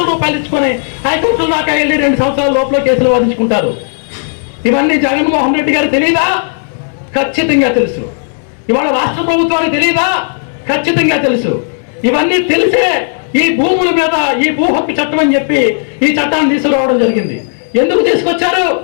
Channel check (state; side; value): silent; right; digital silence